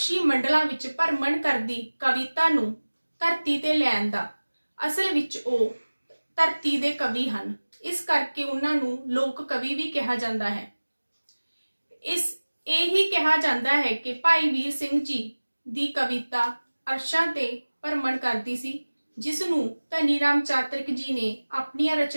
ਮੰਡਲਾਂ ਵਿੱਚ ਭਰਮਣ ਕਰਦੀ ਕਵਿਤਾ ਨੂੰ ਧਰਤੀ ਤੇ ਲਿਆਉਣ ਦਾ ਅਸਲ ਵਿੱਚ ਉਹ ਧਰਤੀ ਦੇ ਕਵੀ ਹਨ। ਇਸ ਕਰਕੇ ਉਹਨਾਂ ਨੂੰ ਲੋਕ ਕਵੀ ਵੀ ਕਿਹਾ ਜਾਂਦਾ ਹੈ। ਇਹ ਹੀ ਕਿਹਾ ਜਾਂਦਾ ਹੈ ਕਿ ਭਾਈ ਵੀਰ ਸਿੰਘ ਜੀ ਦੀ ਕਵਿਤਾ ਅਰਸ਼ਾਂ ਤੇ ਭਰਮਣ ਕਰਦੀ ਸੀ, ਜਿਸ ਨੂੰ ਧਨੀ ਰਾਮ ਚਾਤਰਿਕ ਜੀ ਨੇ ਆਪਣੀਆਂ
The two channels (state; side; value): inverted; both; correlation -1.00